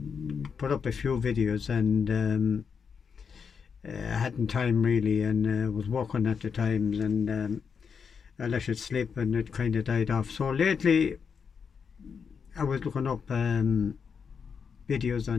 put up a few videos and I hadn't time really, and was working at the times, and I let it slip and it kind of died off. So lately, I was looking up videos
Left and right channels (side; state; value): right; quieter; 6.3 dB